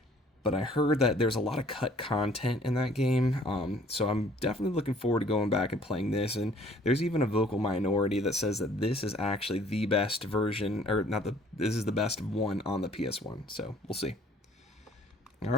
but I heard that there's a lot of cut content in that game, so I'm definitely looking forward to going back and playing this, and there's even a vocal minority that says that this is actually the best version, or this is the best one on the PS1, so we'll see.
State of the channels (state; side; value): normal; both; correlation 0.57